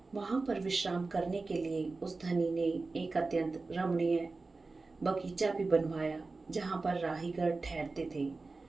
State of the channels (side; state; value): left; quieter; 3.7 dB